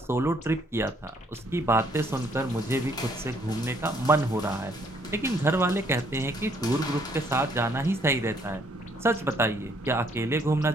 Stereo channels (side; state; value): both; normal; correlation 0.66